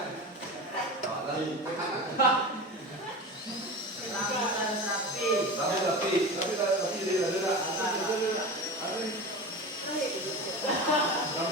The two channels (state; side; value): normal; both; correlation 0.29